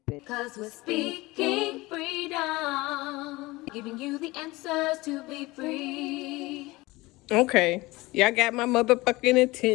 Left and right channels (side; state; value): right; quieter; 21.1 dB